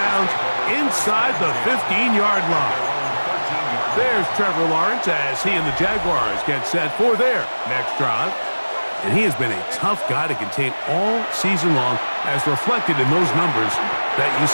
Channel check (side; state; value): both; inverted; correlation -1.00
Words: inside the 15-yard line. There's Trevor Lawrence as he and the Jaguars get set for their next drive. And he has been a tough guy to contain all season long, as reflected in those numbers that you